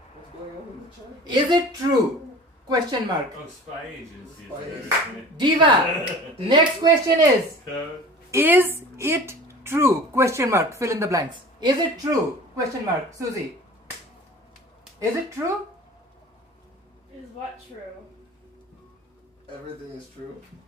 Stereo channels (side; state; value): both; normal; correlation 0.41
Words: What's going on in the chat? Is it true? Question mark. Oh, spy agencies. Spy are- Diva. Next question is. Code. Is it true? Question mark. Fill in the blanks. Is it true? Question mark. Susie. Is it true? Is what true? Everything is true.